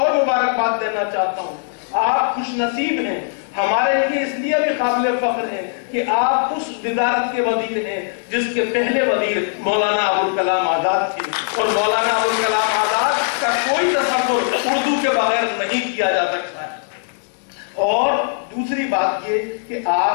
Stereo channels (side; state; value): right; silent; digital silence